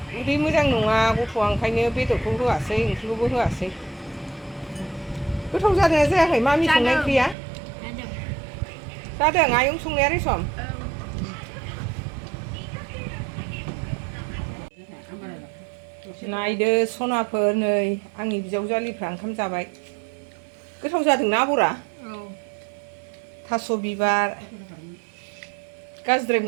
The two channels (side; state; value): left; drops out; at 7.4 s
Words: उदै मोजां नङा गथ'आ ओंखायनो बेदरखौ होआसै ओंख्रिखौबो होआसै गोथाव जादोंना जायाखै मामि संनाय ओंख्रिया जादों आयं संनाया रेसम नायदो सनाफोर नै आंनि बिजावजालिफ्रा ओंखाम जाबाय गोथाव जादोंना आबरा थास' बिबार गाज्रिद्राय